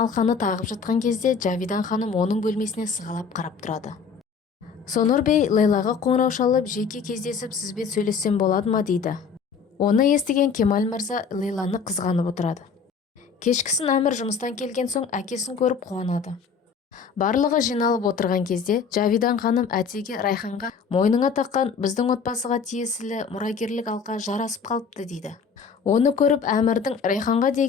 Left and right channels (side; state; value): right; quieter; 5.8 dB